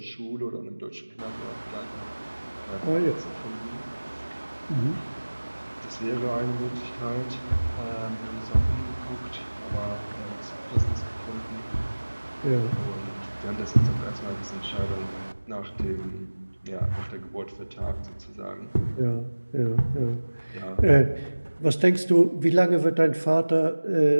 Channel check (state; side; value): inverted; both; correlation -1.00